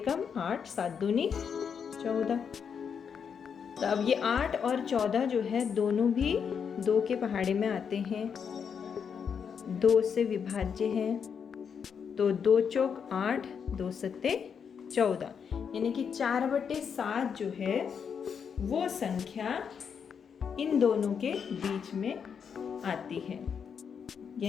8, 7 दूनी 14। तो अब ये 8 और 14 जो है दोनों भी 2 के पहाड़े में आते हैं, 2 से विभाज्य हैं। तो 2 चौक 8, 2 सत्ते 14, यानी कि 4/7 जो है वो संख्या इन दोनों के बीच में आती है।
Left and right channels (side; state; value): right; quieter; 6.9 dB